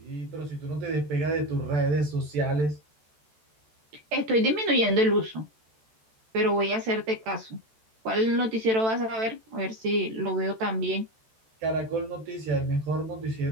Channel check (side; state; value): left; late; 14 ms